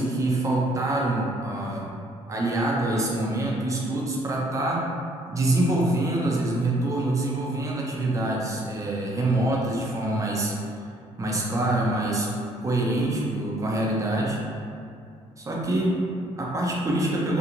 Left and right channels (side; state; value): both; normal; correlation 0.64